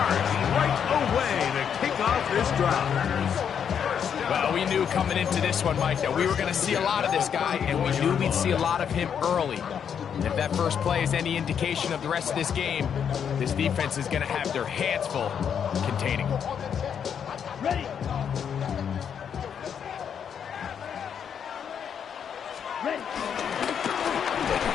right away to kick off this drive. Well, we knew coming into this one, Mike, that we were going to see a lot of this guy, and we knew we'd see a lot of him early. And if that first play is any indication of the rest of this game, this defense is going to have their hands full containing him. Ready.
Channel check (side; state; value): right; quieter; 7.9 dB